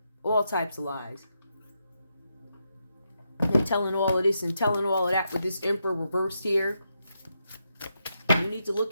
All types of lies. And telling all of this and telling all of that with this Emperor reversed here. You need to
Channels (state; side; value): inverted; both; correlation -0.83